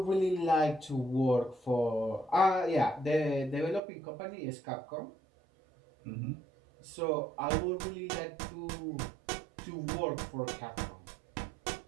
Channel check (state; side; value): drops out; left; at 3.8 s